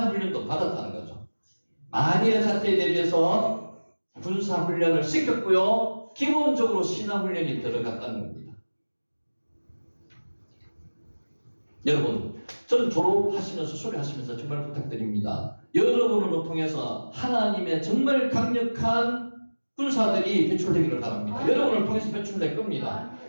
받았다는 거죠. 만일의 사태에 대비해서 군사훈련을 시켰고요. 기본적으로 신앙훈련이 들어갔다는 겁니다. 여러분, 저는 졸업하시면서 수료하시면서 정말 부탁드립니다. 여러분을 통해서 하나님의 정말 강력한 군사들이 배출되기를 바랍니다. 여러분을 통해서 배출될 겁니다.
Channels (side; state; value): both; inverted; correlation -1.00